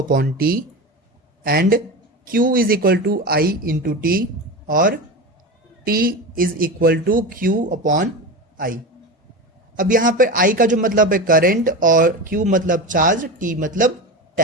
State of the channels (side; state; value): both; normal; correlation 0.25